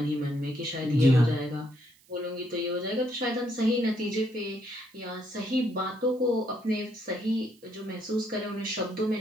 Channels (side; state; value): right; noise; hiss, 29 dB below the sound